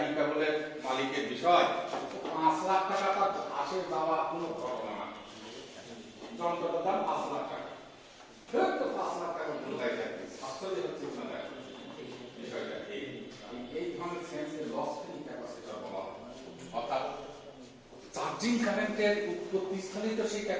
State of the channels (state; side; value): identical; both; correlation 1.00